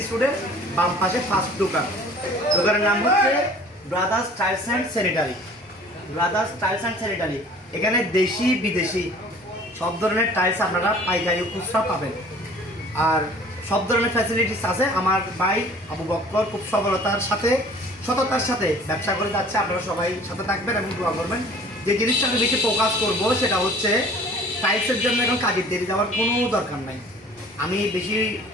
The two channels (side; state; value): both; normal; correlation 0.49